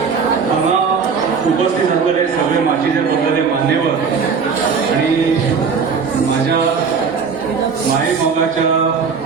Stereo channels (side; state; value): left; quieter; 5.7 dB